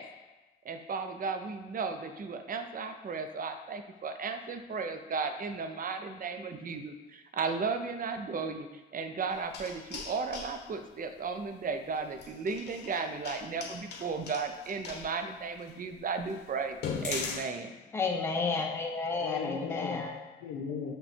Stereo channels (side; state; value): both; normal; correlation 0.18